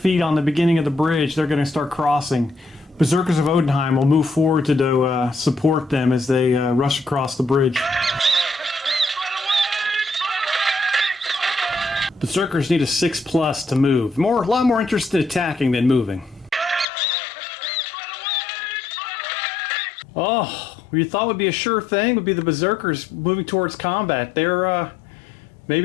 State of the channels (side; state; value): right; drops out; at 16.9 s